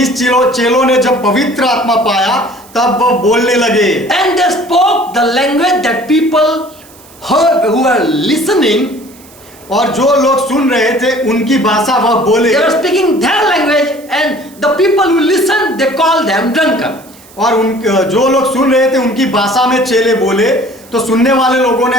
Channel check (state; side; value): noise; right; hiss, 24 dB below the sound